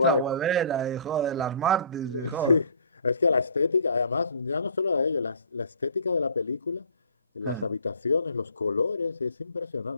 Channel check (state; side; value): inverted; both; correlation -0.51